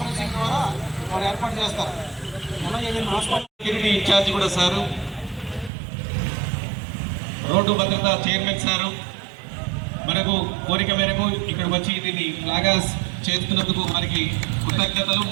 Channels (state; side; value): drops out; left; at 5.7 s